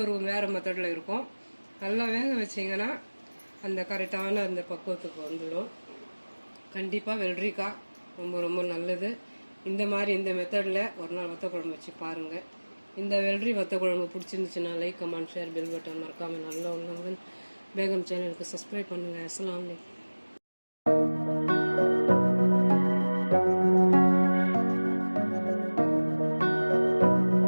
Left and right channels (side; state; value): both; inverted; correlation -1.00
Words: ஒரு வேறு மெத்தடில் இருக்கும். நல்லா வேக வச்சிங்கன்னா அந்த கரெக்டான அந்த பக்குவத்துக்கு வந்துடும். கண்டிப்பாக வெள்ளரிக்காய் ரொம்ப ரொம்ப நல்லது. இந்த மாதிரி இந்த மெத்தடில் ஒரு நாள் வத்த குழம்பு வச்சு பாருங்கள். இந்த வெள்ளரி வத்த குழம்பு பிடிச்சிருந்துச்சுன்னா like, comment, share, bell button மறக்காமல் நல்லா உள்ளவங்க பேகம் சேனலுக்கு சப்ஸ்கிரைப் பண்ணுங்கள். அஸ்ஸலாமு அலைக்கும்.